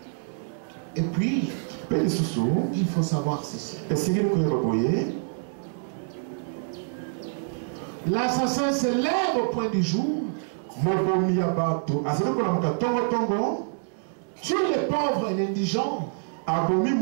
Et puis, il faut savoir ceci. L'assassin se lève au point du jour. Tue les pauvres et l'indigent.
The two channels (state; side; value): silent; left; 61 dB below the other